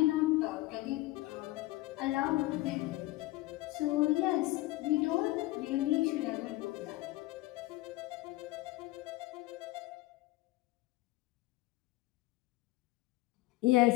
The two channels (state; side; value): quieter; right; 18.8 dB